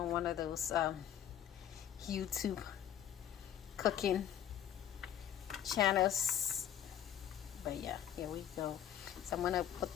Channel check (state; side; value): quieter; right; 10.2 dB